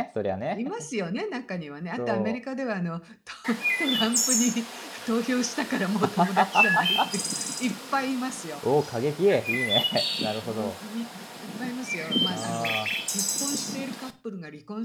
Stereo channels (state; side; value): identical; both; correlation 1.00